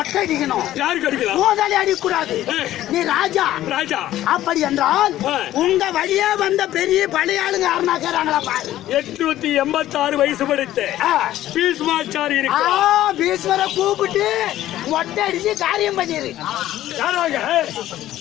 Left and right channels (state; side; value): quieter; right; 13.7 dB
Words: அடிக்கணும். யாருக்கு அடிக்கலாம்? மோதாலி அடிக்கூடாது. நீ ராஜா. ராஜா அப்படி என்றால் உங்க வழியே வந்த பெரிய பழைய ஆளுங்க யாருன்னா கேறாங்களா பாரு. 886 வயசு படித்த பீஷ்மாச்சாரி இருக்கு. பீஷ்மரை கூப்பிட்டு மொட்டை அடிச்சு காரியம் பண்ணிரு. யாராக?